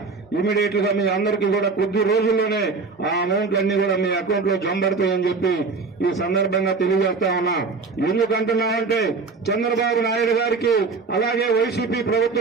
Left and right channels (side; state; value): left; quieter; 4.4 dB